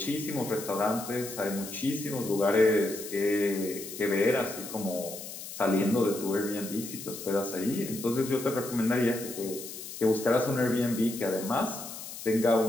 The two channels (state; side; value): noise; left; hiss, 11 dB below the sound